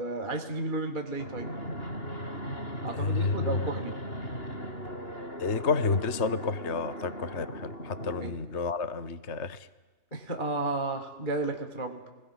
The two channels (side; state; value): right; late; 3.2 ms